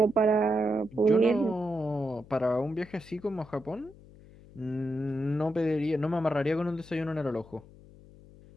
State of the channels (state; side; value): noise; left; hum, 22 dB below the sound